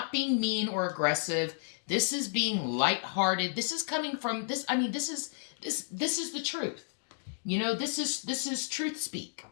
being mean or aggressive. This is being lighthearted. This is coming from this. I mean, this is the truth. This is truth speak.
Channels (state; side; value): silent; right; digital silence